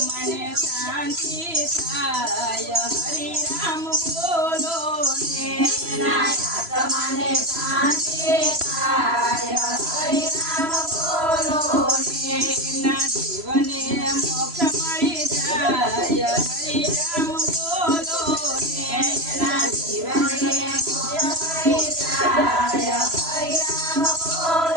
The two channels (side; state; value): left; late; 3.0 ms